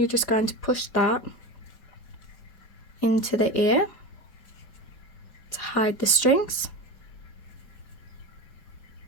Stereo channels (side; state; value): right; late; 5.3 ms